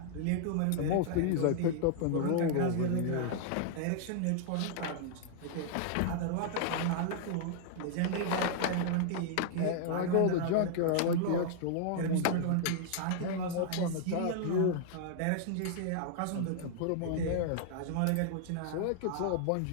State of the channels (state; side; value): different; both; correlation -0.01